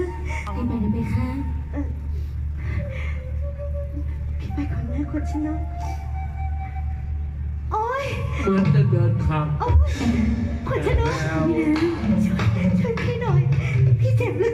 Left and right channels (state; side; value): identical; both; correlation 1.00